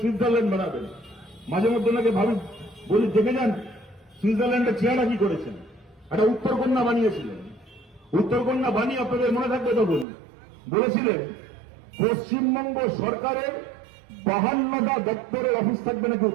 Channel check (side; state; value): left; drops out; at 10.1 s